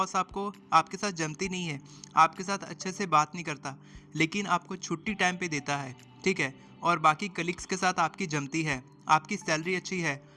आपको आपके साथ जमती नहीं है, आपके साथ अच्छे से बात नहीं करता, लेकिन आपको छुट्टी टाइम पे देता है, ठीक है, और बाकी कलीग्स के साथ आपकी जमती है, आपकी सैलरी अच्छी है,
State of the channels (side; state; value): both; identical; correlation 1.00